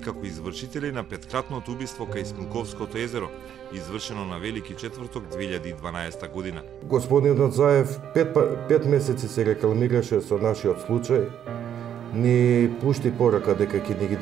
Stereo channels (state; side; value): quieter; left; 9.6 dB